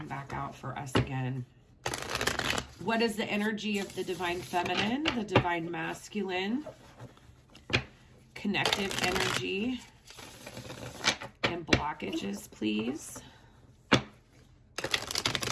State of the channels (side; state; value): both; identical; correlation 1.00